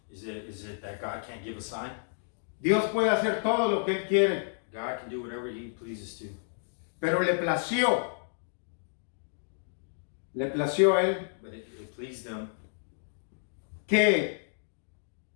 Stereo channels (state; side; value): silent; right; digital silence